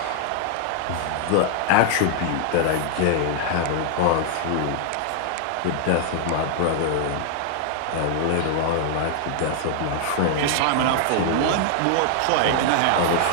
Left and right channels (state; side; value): different; both; correlation 0.00